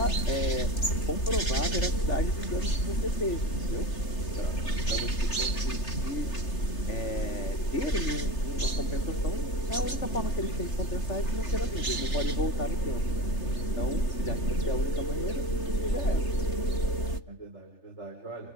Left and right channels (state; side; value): late; right; 3.2 ms